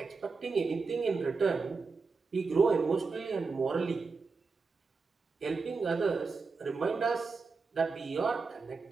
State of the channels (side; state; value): left; quieter; 4.5 dB